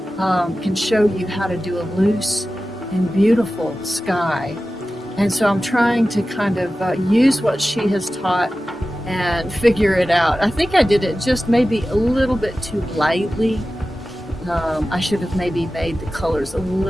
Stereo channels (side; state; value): both; normal; correlation 0.95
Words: can show you how to do a loose and beautiful sky. And so I'm trying to kind of use what she has taught and figure it out. I think I did it just maybe a little bit too lightly. I should have maybe made the colors a